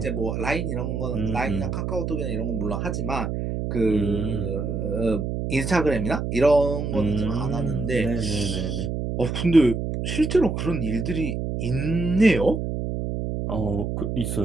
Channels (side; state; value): right; noise; hum, 2 dB below the sound